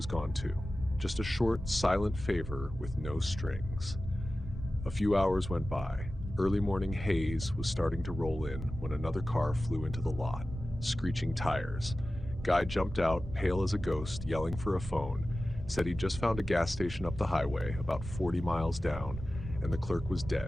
gone too. Just a short, silent favor with no strings. A few hours went by. Early morning haze was starting to roll in when another car flew into the lot, screeching tires. Guy jumped out, pale as a ghost, yelling for a phone, said he'd just found a gas station up the highway, about 40 miles down, and the clerk was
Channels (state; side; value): noise; right; rumble, 9 dB below the sound